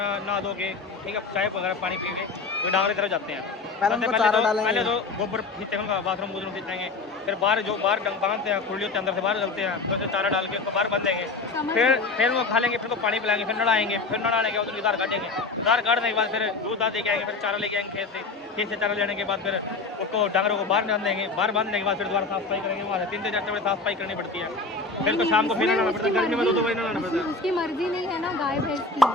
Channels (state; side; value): quieter; right; 3.9 dB